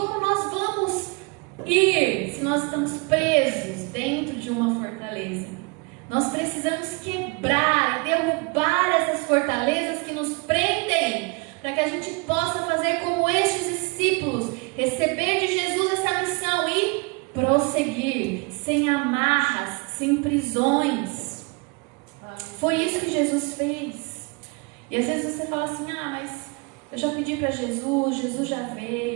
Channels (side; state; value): left; quieter; 30.3 dB